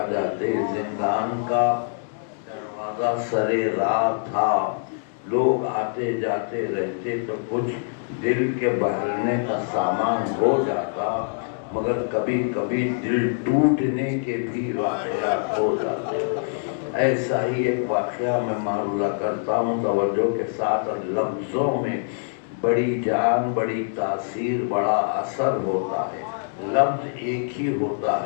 जाते। जिंदान का दरवाजा सरे राह था, लोग आते जाते रहते तो कुछ दिल के बहलने का सामान हो जाता, मगर कभी कभी दिल टूटने के भी वाक़यात हो जाते। ऐसा ही एक वाक़या मैं मारूला करता हूँ तवज्जो के साथ, और लफ्ज़ों में बड़ी जान, बड़ी तासीर, बड़ा असर होता है। लफ्ज़ एक ही होता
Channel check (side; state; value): right; silent; digital silence